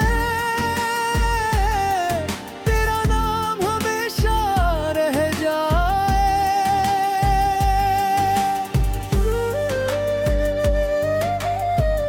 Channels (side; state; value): both; identical; correlation 1.00